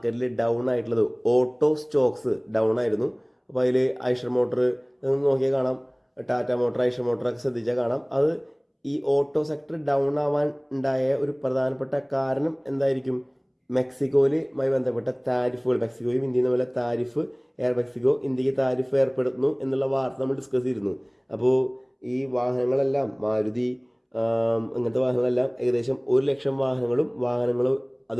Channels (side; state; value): both; identical; correlation 1.00